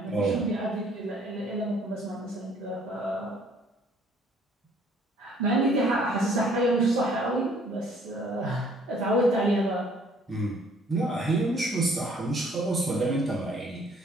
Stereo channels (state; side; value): normal; both; correlation 0.59